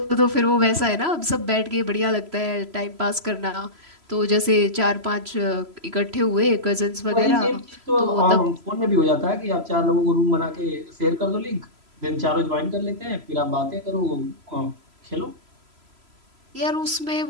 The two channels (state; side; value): late; left; 3.0 ms